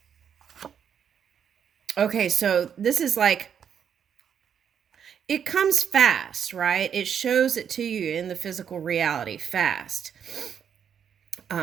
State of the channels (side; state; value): left; quieter; 8.0 dB